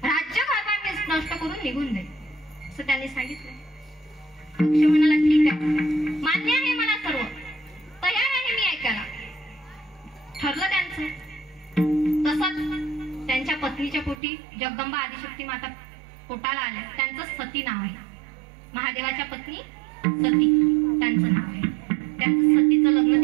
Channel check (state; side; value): drops out; left; at 14.2 s